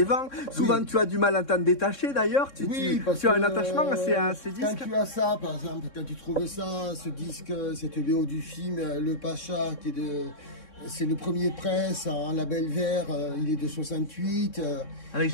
vends. Souvent tu as du mal à t'en détacher d'ailleurs, tu as un attachement à ces disques. Quand tu as ça, par exemple, quand tu trouvais ça, ce disque, cette BO du film, Le Pacha, qui est c'est le premier presse en label vert, il est de 68. Avec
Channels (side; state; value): right; late; 3.6 ms